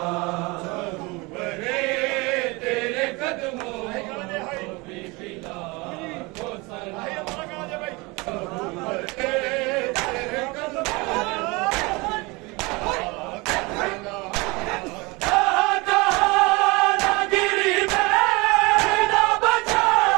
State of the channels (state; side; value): quieter; left; 25.4 dB